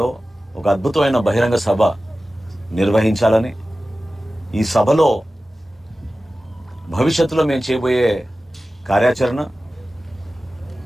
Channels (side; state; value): both; normal; correlation 0.95